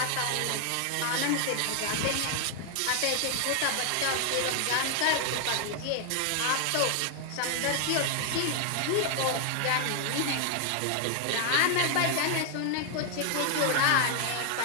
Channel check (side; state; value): both; different; correlation 0.00